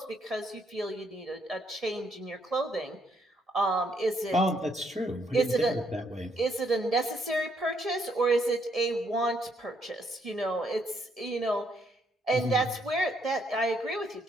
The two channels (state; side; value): normal; both; correlation 0.72